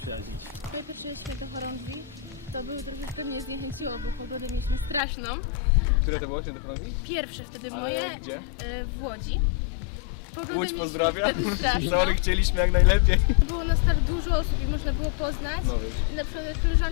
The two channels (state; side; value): drops out; right; at 5.0 s